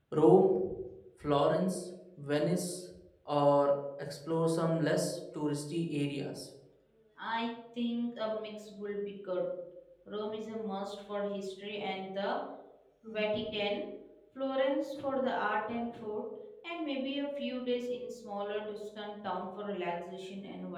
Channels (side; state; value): both; identical; correlation 1.00